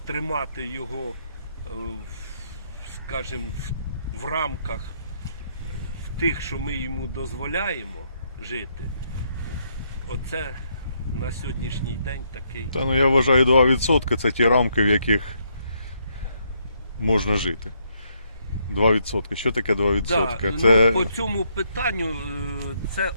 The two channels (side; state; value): both; inverted; correlation -0.74